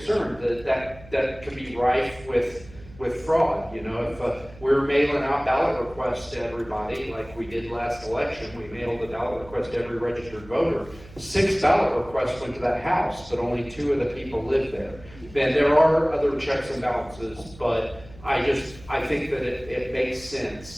that can be rife with fraud. If we're mailing out ballot requests to everybody, like we did last election, we mailed a ballot request to every registered voter. 6 ballot requests went to that house, but only 2 of the people lived there. And there are other checks and balances, but I think that it makes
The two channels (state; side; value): noise; right; hum, 20 dB below the sound